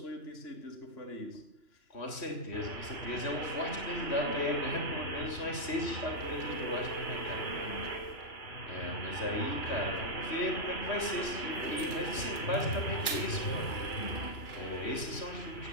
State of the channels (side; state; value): right; late; 2.9 ms